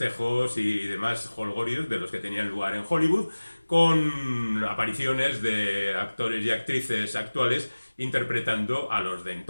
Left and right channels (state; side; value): inverted; both; correlation -1.00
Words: y demás jolgorios de los que tenían lugar en Hollywood, con apariciones de actores y actrices actuales interpretando a los de